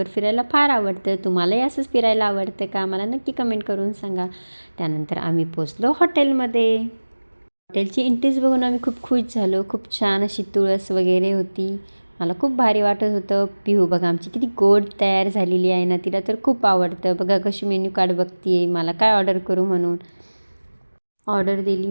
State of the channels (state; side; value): inverted; both; correlation -1.00